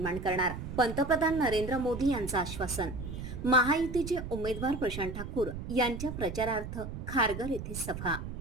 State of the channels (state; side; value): noise; right; rumble, 8 dB below the sound